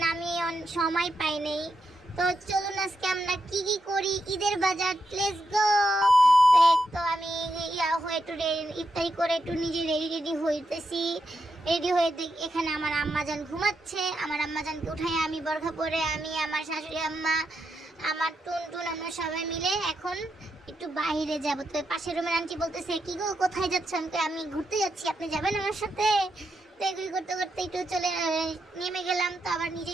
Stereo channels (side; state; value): both; normal; correlation 0.84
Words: আমি সময় পাই নাই। তো চলুন আজকে আমরা কি কি করি ঈদের বাজার, লেটস গো। তো আমি হয়ে একটু ইফতারি করে একটু নিজে রেডি হইতেছি। রেডি হয়ে এখানে আমার আম্মাজান ঘুমাচ্ছে। আমার আম্মাজানকে উঠাই আমি বরখা পরে আমি আমার শাশুড়ি আম্মা আমার টুনটুন আমরা সবাই মিলে এখন একটু বাইরে যাব। তো পাশের রুমের আন্টি বলতেছে, কি গো কোথায় যাচ্ছ? আমি ঘুরতে যাচ্ছি, আপনি যাবেন আমার সাথে? তো এগুলি করতে করতে একটু চলে নেমে গেলাম। তো আবার